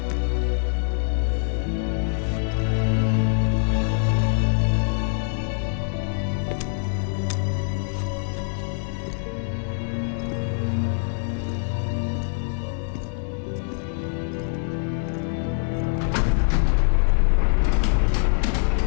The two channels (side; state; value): right; silent; 63 dB below the other